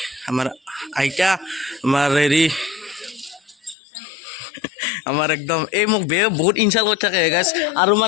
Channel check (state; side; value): drops out; right; at 3.8 s